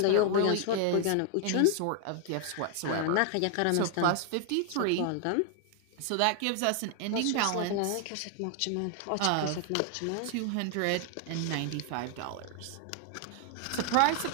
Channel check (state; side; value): different; both; correlation 0.00